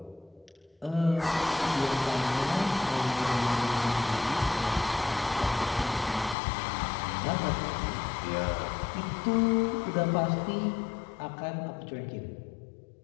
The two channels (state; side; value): drops out; right; at 6.4 s